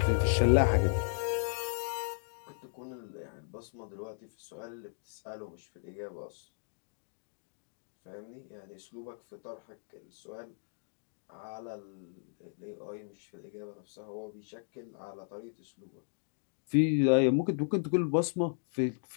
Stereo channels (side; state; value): right; silent; digital silence